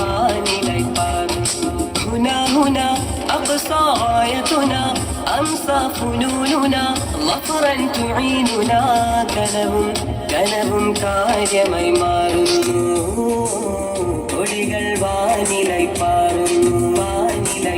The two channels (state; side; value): identical; both; correlation 1.00